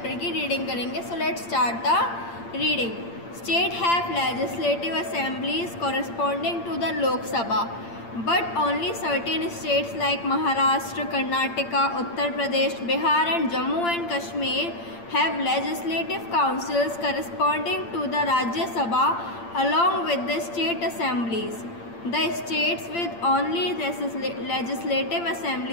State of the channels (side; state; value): right; late; 8.7 ms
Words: की reading करेंगे. So let's start the reading. State have legislative assemblies corresponding to the Lok Sabha, but only certain states like Maharashtra, Karnataka, Uttar Pradesh, Bihar and Jammu and Kashmir have legislative councils corresponding to the Rajya Sabha along with the state assemblies. The states with only legislative